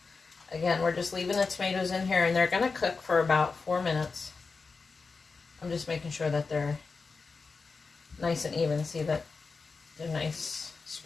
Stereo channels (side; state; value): right; quieter; 4.5 dB